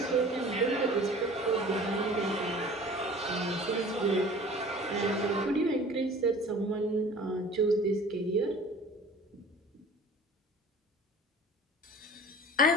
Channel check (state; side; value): normal; both; correlation 0.44